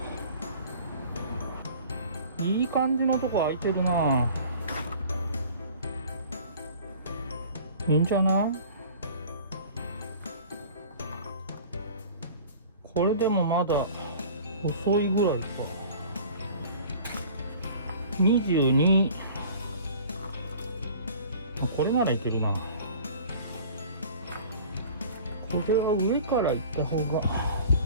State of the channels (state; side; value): inverted; both; correlation -0.45